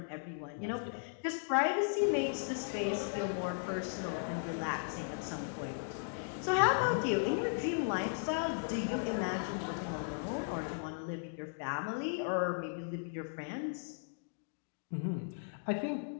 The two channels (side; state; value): right; silent; digital silence